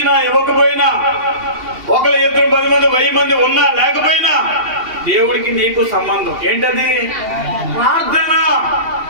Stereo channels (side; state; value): left; late; 2.8 ms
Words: ఇవ్వకపోయినా, 1, 2, 10 మంది 1000 మంది ఉన్నా లేకపోయినా దేవుడికి నీకు సంబంధం ఏంటది? ప్రార్థన.